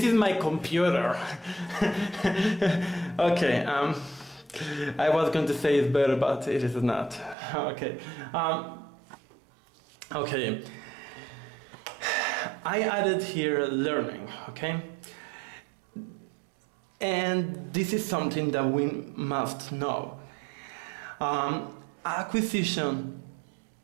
is my computer. Okay, I was going to say it's better, but it is not. Okay. Okay. I added here learning, okay? And this is something that we must know. Acquisition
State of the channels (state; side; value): drops out; left; at 7.4 s